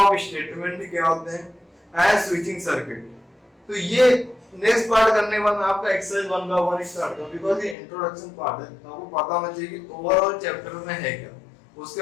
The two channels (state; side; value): drops out; right; at 7.8 s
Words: स्टेटमेंट क्या होते हैं, एंड स्विचिंग सर्किट। तो ये नेक्स्ट पार्ट करने के बाद मैं आपका एक्सरसाइज 1 का 1 स्टार्ट करूं, बिकॉज़ ये इंट्रोडक्शन पार्ट है। तो आपको पता होना चाहिए कि ओवरऑल चैप्टर में है क्या। उसके